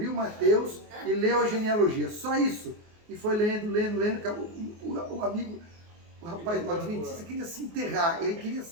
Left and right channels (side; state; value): left; late; 24 ms